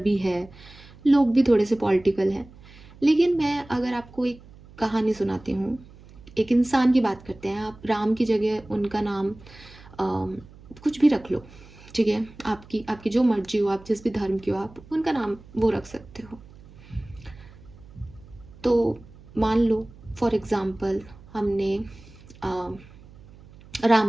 है, लोग भी थोड़े से पॉलिटिकल हैं। लेकिन मैं अगर आपको एक कहानी सुनाती हूँ, एक इंसान की बात करते हैं। आप राम की जगह उनका नाम कुछ भी रख लो, ठीक है। आपकी जो मर्जी हो, आप जिस भी धर्म की हो, आप उनका नाम वो रख सकते हो। तो मान लो फॉर एग्जाम्पल हमने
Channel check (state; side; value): noise; right; hum, 22 dB below the sound